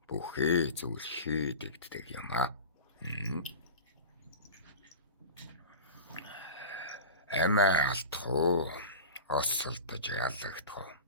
бүхий зүйл хийдэгддэг юм аа. Эмээ алдах уу? Осолдож ялагдах уу?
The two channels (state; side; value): inverted; both; correlation -0.32